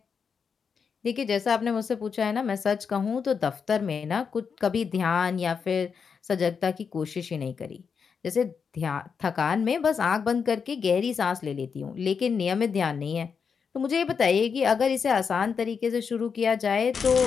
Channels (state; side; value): quieter; right; 6.1 dB